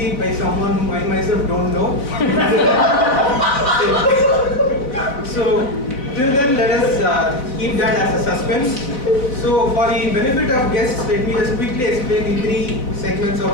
by someone whom I myself don't know. So till then, let us keep that as a suspense. So for the benefit of guests, let me just quickly explain the three segments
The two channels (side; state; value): right; late; 3.9 ms